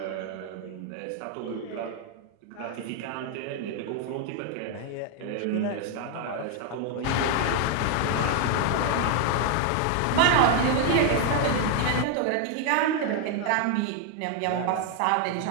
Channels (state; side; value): different; both; correlation 0.00